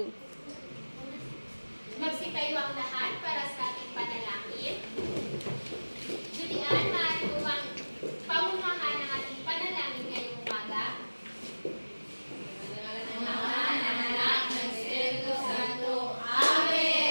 Magsitayo ang lahat para sa ating panalangin. Julian, maaari mo bang pamunuhan ang ating panalangin ngayong umaga?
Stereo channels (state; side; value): inverted; both; correlation -1.00